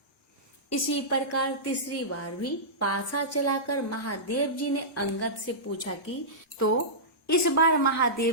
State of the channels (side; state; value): both; normal; correlation -0.16